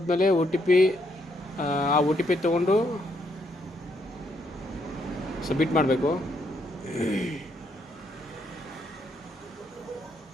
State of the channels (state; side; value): normal; both; correlation 0.74